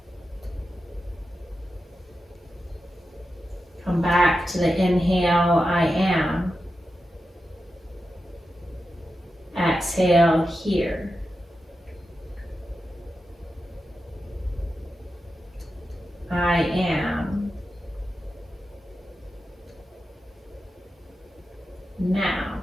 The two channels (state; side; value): normal; both; correlation 0.90